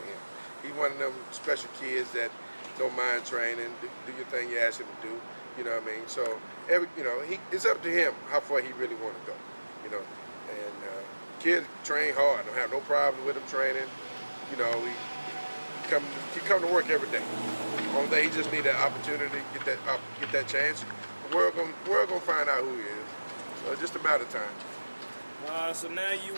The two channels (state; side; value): inverted; both; correlation -1.00